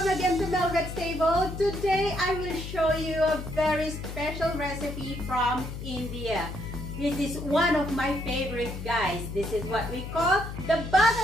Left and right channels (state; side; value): noise; left; hum, 8 dB below the sound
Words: again to Melvet's Table. Today I will show you a very special recipe from India. This is one of my favorite, guys. This is what we call the